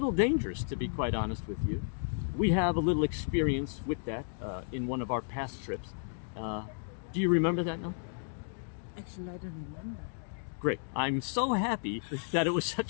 dangerous, to be quite honest with you. We have a little experience with that in one of our past trips. Do you remember that now? Actually, I don't remember. Great. I'm so happy that it was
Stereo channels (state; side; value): silent; right; digital silence